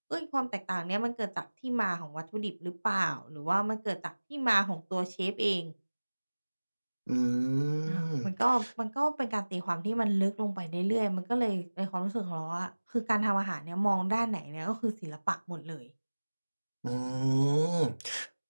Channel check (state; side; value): inverted; both; correlation -1.00